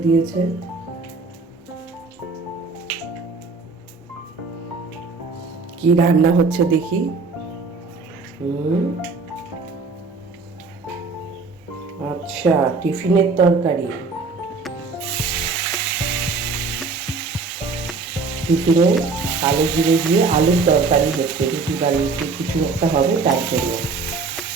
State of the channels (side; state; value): left; quieter; 4.2 dB